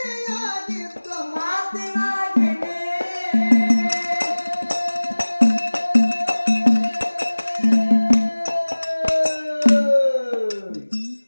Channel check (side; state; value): both; inverted; correlation -1.00